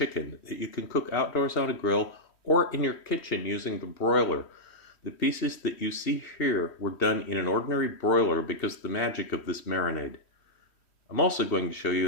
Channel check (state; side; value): late; right; 3.1 ms